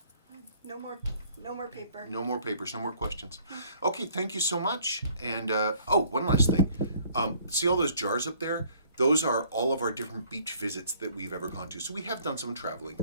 No more paper. No more papers, no more questions. Okay, thank you so much. And, one last thing. See all those jars up there? Those are all of our different beach visits that we've ever gone to. So we have done some traveling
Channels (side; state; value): both; inverted; correlation -0.59